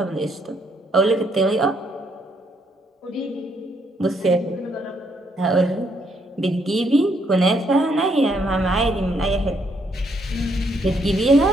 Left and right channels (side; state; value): both; normal; correlation 0.72